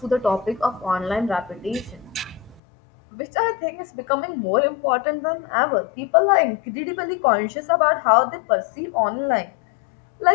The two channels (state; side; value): drops out; right; at 2.6 s